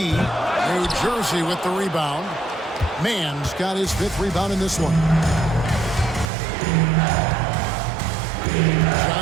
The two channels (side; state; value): left; drops out; at 6.2 s